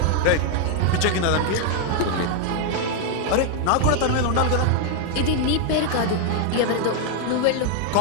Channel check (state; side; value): different; both; correlation 0.00